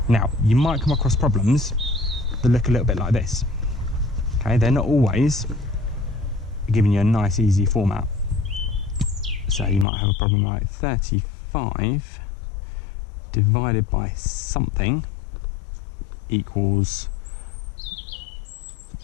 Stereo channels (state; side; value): drops out; right; at 9.9 s